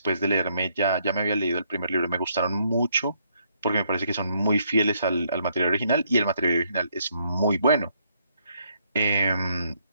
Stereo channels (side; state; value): both; inverted; correlation -0.72